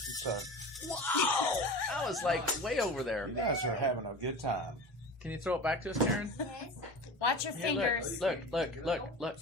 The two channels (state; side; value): normal; both; correlation 0.33